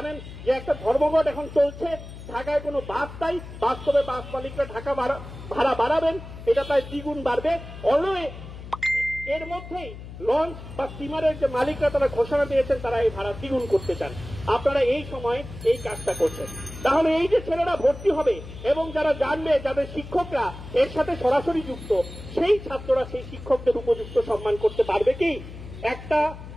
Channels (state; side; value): noise; left; hum, 13 dB below the sound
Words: যে একটা ধর্মঘট এখন চলছে, ঢাকায় কোনো বাস নাই, বাস্তবে বাস মালিকরা ঢাকা ভাড়া বাড়াবেন, এটা প্রায় দ্বিগুণ বাড়বে। অলওয়ে এর মধ্যেই লঞ্চ বা স্টিমারের যে মালিকরা তারা ঘোষণা দিয়েছেন তারা এই ভাড়া দ্বিগুণ করতে চান। আপনারা এই সময় এই কাজটা করছেন। তাহলে এই যে ছেলেরা ভর্তি হবে এবং যারা জানবে, যাদের শিক্ষকরা এর সাথে সরাসরি যুক্ত, সেই ছাত্ররা সেই শিক্ষকদের উপযুক্ত সম্মান করতে পারবে কি? একটা